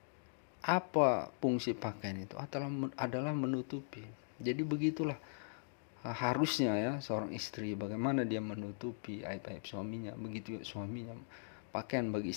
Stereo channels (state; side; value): silent; right; digital silence